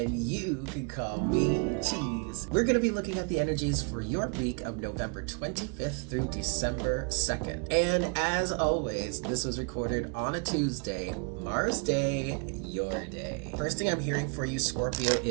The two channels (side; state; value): left; quieter; 36.6 dB